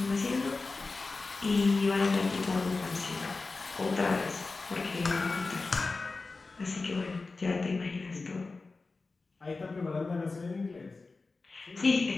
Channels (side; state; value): right; quieter; 3.8 dB